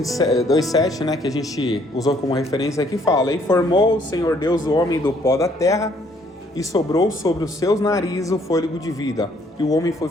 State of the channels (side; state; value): both; normal; correlation 0.65